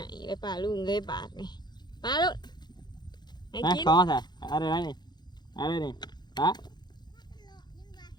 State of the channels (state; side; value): late; right; 0.21 ms